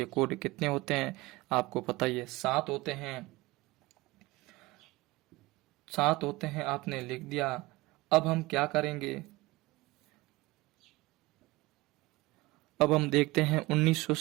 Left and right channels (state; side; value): quieter; left; 21.2 dB